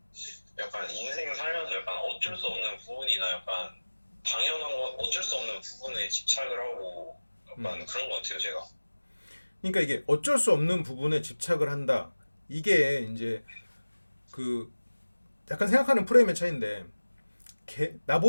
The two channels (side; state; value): both; inverted; correlation -1.00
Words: 약간 인생 살면서 약간 어쩔 수 없는 부분이나 약간 당연한 거 어쩔 수 없는 부분에 집착을 하고 약간 그런 것 같아요 제가. 그러니까 이게 어쩔 수 없는 부분에 집착을 한다. 이게 이제 그 약간 생각하는 프레임의 차이인데